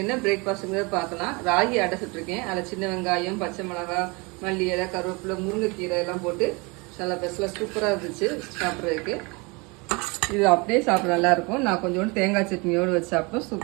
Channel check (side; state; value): left; quieter; 27.9 dB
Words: என்ன பிரேக்ஃபாஸ்ட்டுங்கிறத பார்க்கலாம். ராகி அடை சுட்டுருக்கேன். அதில் சின்ன வெங்காயம், பச்சை மிளகாய், மல்லி இலை, கருவேப்பிலை, முருங்கைக்கீரை எல்லாம் போட்டு நல்லா பெஸ்ட்லாம் சூப்பராக இருந்துச்சு சாப்பிட்றதுக்கு. இது அப்படியே சாப்பிட நல்லாயிருக்கும். நான் கொஞ்சோண்டு தேங்காய் சட்னியோடு வச்சு சாப்பிட்டோம்,